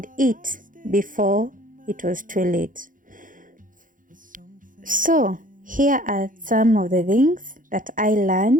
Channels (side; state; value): left; late; 0.39 ms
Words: eat before it was too late. So here are some of the things that I